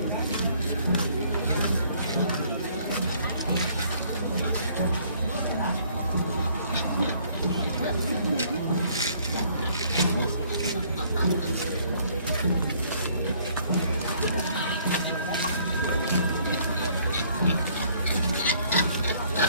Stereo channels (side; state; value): both; inverted; correlation -0.62